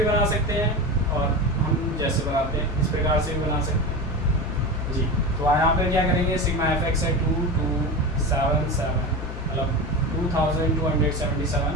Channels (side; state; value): left; noise; hum, 7 dB below the sound